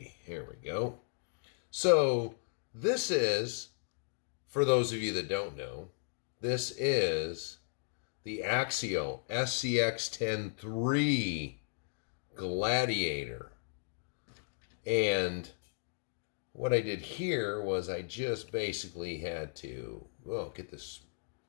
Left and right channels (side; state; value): right; silent; digital silence